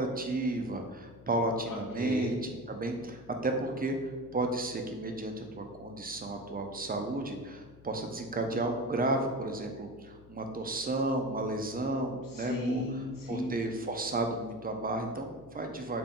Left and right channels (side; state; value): left; noise; hum, 21 dB below the sound